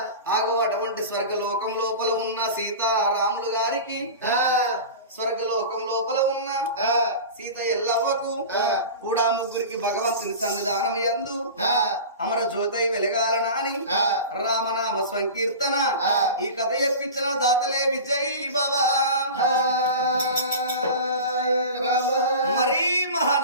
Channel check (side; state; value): both; inverted; correlation -0.32